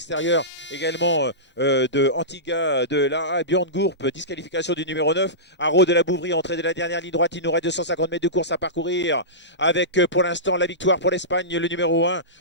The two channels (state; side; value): normal; both; correlation -0.18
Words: également de Antigua de l'AA, Björn Gourp, disqualification du numéro 9, Haro de la Bouvrie, entrée de la dernière ligne droite. Il nous reste 250 mètres de course à parcourir avec pour l'instant la victoire pour l'Espagne, le numéro 1,